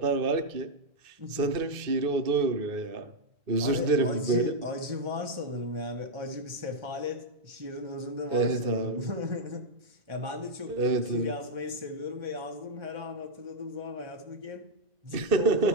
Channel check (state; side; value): late; left; 2.5 ms